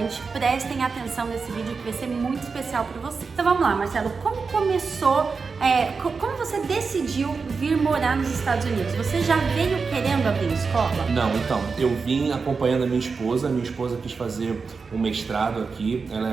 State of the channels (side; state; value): left; quieter; 4.9 dB